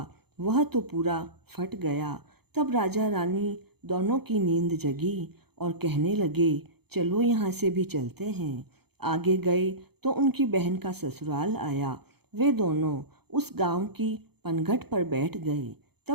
वह तो पूरा फट गया। तब राजा रानी दोनों की नींद जगी और कहने लगे, चलो यहाँ से भी चलते हैं। आगे गए तो उनकी बहन का ससुराल आया। वे दोनों उस गांव की पनघट पर बैठ गए।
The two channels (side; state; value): left; late; 0.96 ms